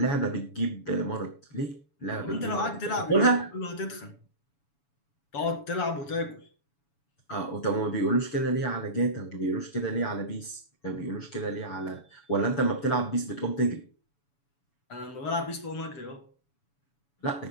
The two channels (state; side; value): late; right; 7.1 ms